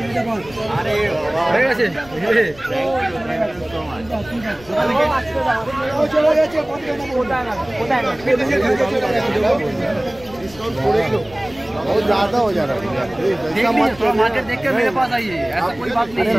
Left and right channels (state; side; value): noise; left; rumble, 20 dB below the sound